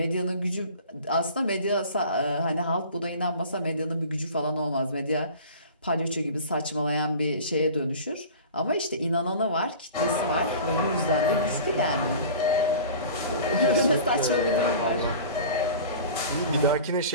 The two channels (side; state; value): both; inverted; correlation -0.40